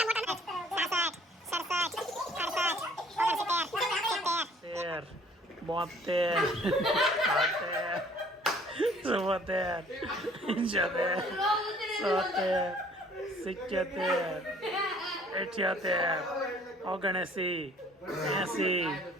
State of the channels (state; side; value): normal; both; correlation 0.56